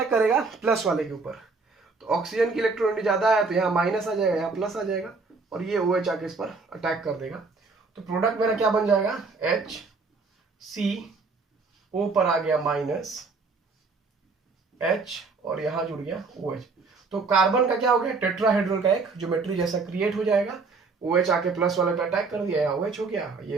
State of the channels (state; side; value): quieter; left; 4.2 dB